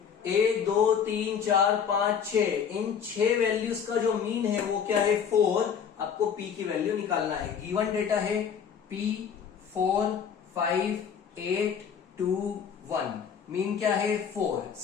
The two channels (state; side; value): quieter; right; 7.4 dB